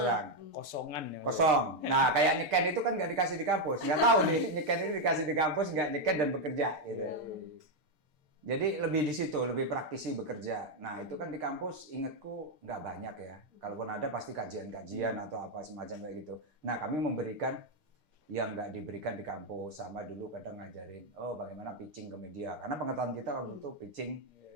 Kosongan ya. Kosong. Nah, kayak nyeken itu kan nggak dikasih di kampus. Nggak tahu nih, nyeken itu dikasih di kampus, nggak nyeken dan bekerja gitu. Jadi lebih di situ, lebih praktisi bekerja. Nah itu kan di kampus ingatku nggak banyak ya. Kalaupun ada pasti kajian-kajian atau apa semacam kayak gitu. Nah kami memberikan yang nggak diberikan di kampus. Sama dulu kadang ngajarin, bagaimana pitching ke media. Karena pengetahuan kita waktu itu pitching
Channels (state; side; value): late; left; 6.6 ms